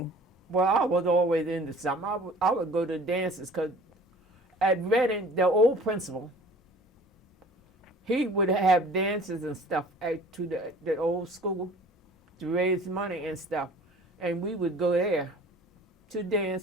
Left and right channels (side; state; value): both; normal; correlation 0.48